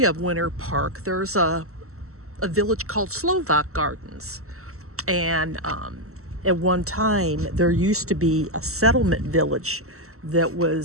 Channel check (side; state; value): left; late; 0.63 ms